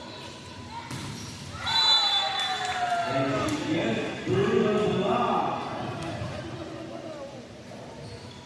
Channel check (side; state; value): both; identical; correlation 1.00